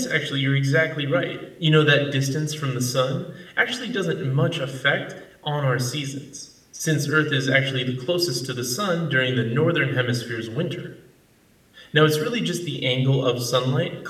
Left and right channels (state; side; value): identical; both; correlation 1.00